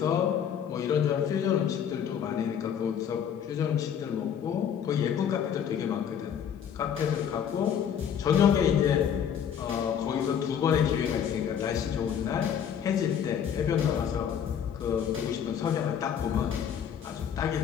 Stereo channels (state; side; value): quieter; right; 8.4 dB